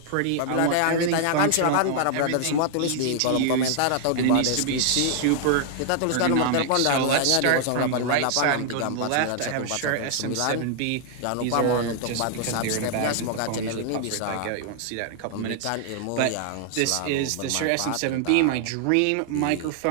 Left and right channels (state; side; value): different; both; correlation 0.00